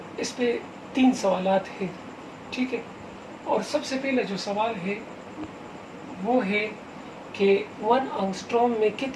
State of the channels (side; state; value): both; identical; correlation 1.00